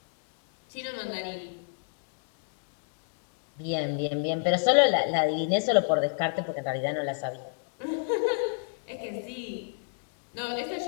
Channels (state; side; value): silent; right; digital silence